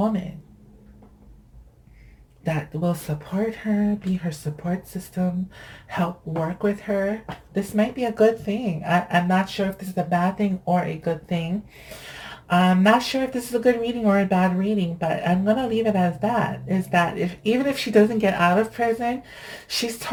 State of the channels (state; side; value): identical; both; correlation 1.00